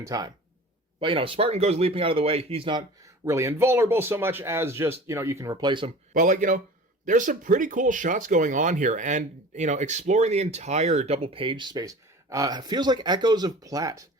time. But, Spartan goes leaping out of the way. He's not really invulnerable so much as just, you can replace him. But, there's some pretty cool shots going on here, and, exploring the entire double page space feels like echoes of Platt.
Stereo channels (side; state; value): both; normal; correlation 0.40